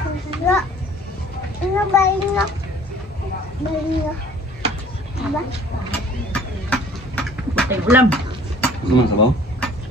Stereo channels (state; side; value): normal; both; correlation 0.51